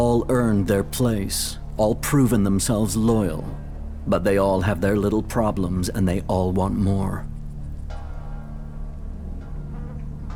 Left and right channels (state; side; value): identical; both; correlation 1.00